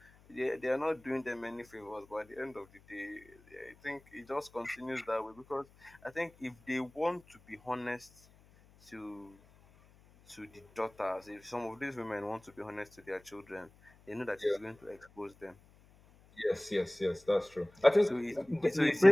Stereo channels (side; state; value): left; noise; hum, 27 dB below the sound